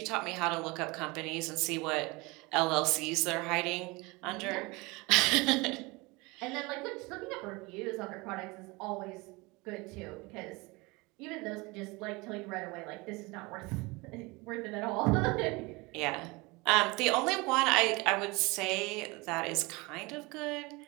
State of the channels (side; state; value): left; quieter; 24.8 dB